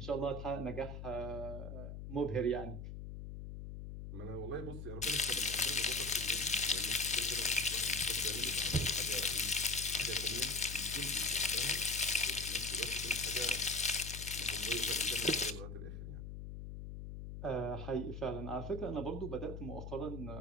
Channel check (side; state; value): left; noise; hum, 8 dB below the sound